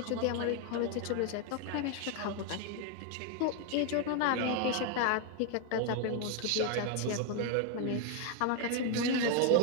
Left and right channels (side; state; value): both; different; correlation 0.01